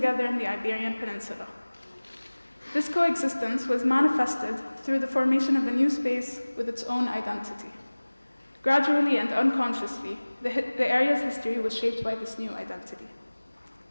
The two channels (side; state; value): both; inverted; correlation -1.00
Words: in the Iberian Peninsula. This coexistence was manifested through the formation of a new space with its own identity. Gradually and unconsciously, the area's history was shaped by this new identity.